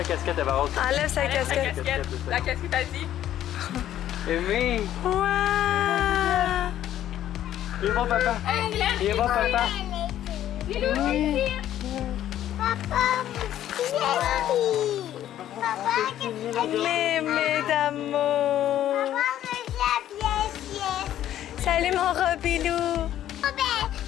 casquette, Eva Rose. Enlève sa casquette. La casquette a dit. Aimée! Wow! Il va papa! Il va papa! Papa, Mémé d'amour! Salut mon Robilou!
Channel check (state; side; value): quieter; right; 11.9 dB